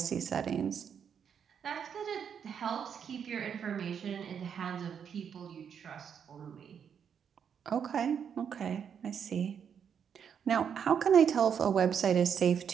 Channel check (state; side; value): quieter; left; 7.6 dB